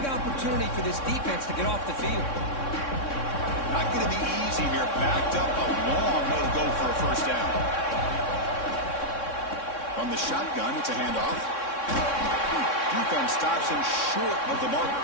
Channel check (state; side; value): late; right; 3.6 ms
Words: opportunity for this defense to get off the field. Not going to be easy here. Backed up a long way to go for a 1st down. From the shotgun, it's a handoff. Defense stops him short of the marker,